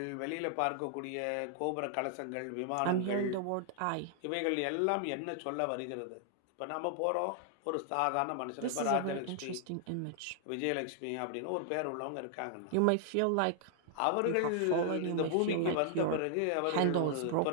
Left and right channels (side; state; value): both; different; correlation 0.00